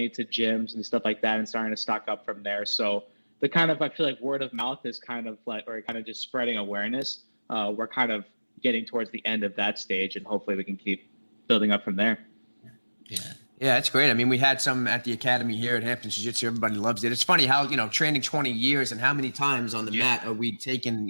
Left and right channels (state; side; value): inverted; both; correlation -1.00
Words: it to gyms and stuff like that and starting to stock up from there. So I feel like word of mouth is kind of just spreading awareness. We're kind of getting towards the end of that stage and hopefully we can keep building up from there. Yeah, it's great. I mean, we had some at the academy here at Hampton Jiu-Jitsu. Everybody loves it. It's funny how, training 20 years and how many times on the mat are we taking,